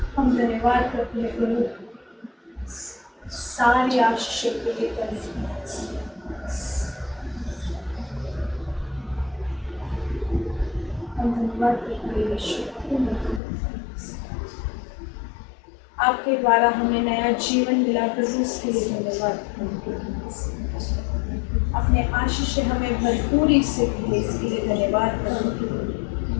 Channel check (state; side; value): drops out; right; at 13.4 s